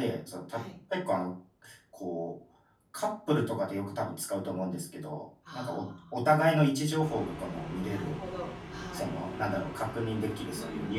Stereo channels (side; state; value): both; identical; correlation 1.00